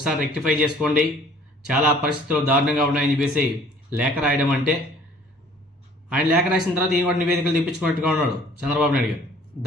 రెక్టిఫై చేసుకోండి, చాలా పరిస్థితులు దారుణంగా ఉన్నాయని చెప్పేసి లేఖ రాయడం అంటే, ఆయన లేఖ రాసిన తర్వాత ఈయన కూడా నివేదికలు తెప్పించుకున్నట్టుగా ఉన్నాడు చంద్రబాబు నాయుడు గారు.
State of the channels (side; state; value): both; normal; correlation 0.54